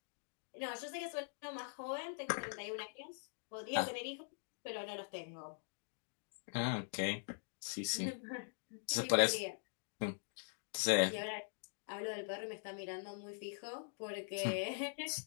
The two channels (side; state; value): right; silent; digital silence